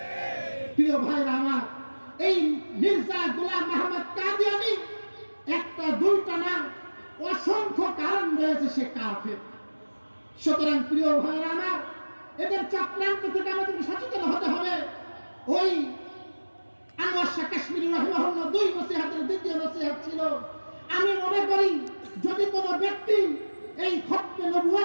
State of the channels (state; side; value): inverted; both; correlation -1.00